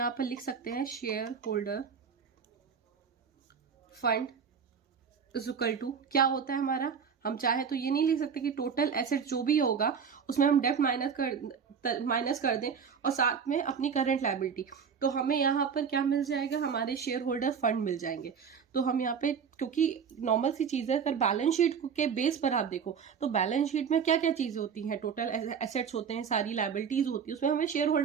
पर लिख सकते हैं share holder fund is equal to, क्या होता है हमारा, हम चाहे तो ये नहीं लिख सकते कि टोटल एसेट जो भी होगा उसमें हम डेब्ट माइनस कर दें और साथ में अपनी करंट लायबिलिटी। तो हमें यहाँ पर क्या मिल जाएगा, हमारे शेयर होल्डर फंड मिल जाएंगे। तो हम यहाँ पे, क्योंकि नॉर्मल सी चीज है, अगर बैलेंस शीट के बेस पर आप देखो तो बैलेंस शीट में क्या क्या चीजें होती हैं, टोटल एसेट्स होते हैं, सारी लायबिलिटीज होती है, उसमें हमें शेयर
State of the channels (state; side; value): quieter; left; 6.7 dB